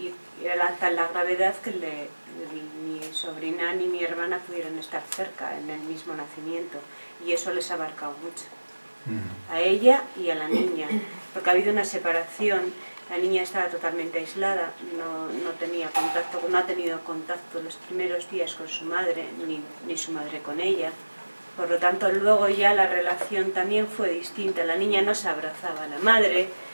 era tal la gravedad que mi sobrina ni mi hermana pudieron estar cerca en el mismo nacimiento. Y eso les ha marcado mucho. A ella y a la niña. Porque ha habido una separación. La niña estaba totalmente aislada, no tenía contacto, no ha tenido contacto los primeros días con su madre, ni su madre con ella. Por lo tanto, luego ya la relación también fue distinta. La niña no se abrazaba a la madre,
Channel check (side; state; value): both; inverted; correlation -1.00